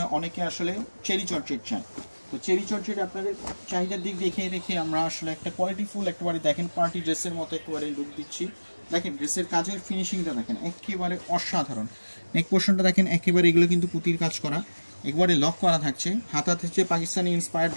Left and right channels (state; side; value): inverted; both; correlation -1.00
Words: অনেকে আসলে চেরি জর্জেট চায়। তো চেরি জর্জেট আপনাদের চাহিদার দিক দেখে রেখে আমরা আসলে একটা কোয়ালিটিফুল একেবারে দেখেন পার্টি ড্রেসের মতো একেবারে লুক দিচ্ছি। দেখেন ড্রেসের কাজের ফিনিশিংটা দেখেন একেবারে অসাধারণ। নেক পোর্শনটা দেখেন একেবারে এগুলো কিন্তু পুঁতির কাজ করা, একবারে লক করা থাকছে। হাতা থেকে পাকিস্তানি ইন্সপায়ার্ড